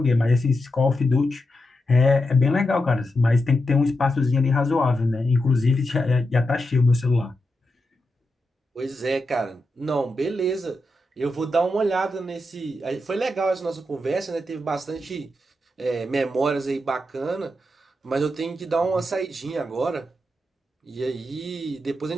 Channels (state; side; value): normal; both; correlation 0.87